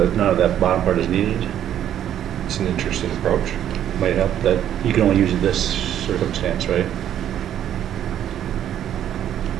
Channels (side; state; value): left; quieter; 10.6 dB